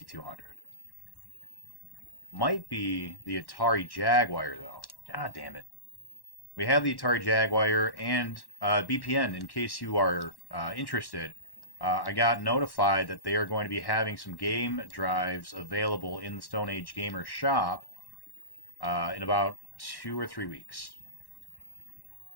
Might be the Atari Jaguar, though. God damn it. We have the Atari Jaguar and BPN, in case you are interested. I got notified that they are going to be having some game drives available in the Stone Age Gamer shop in about 2 or 3 weeks.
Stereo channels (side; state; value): right; late; 1.1 ms